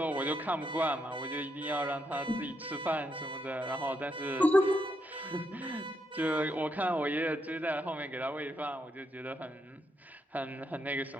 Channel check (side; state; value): both; normal; correlation 0.79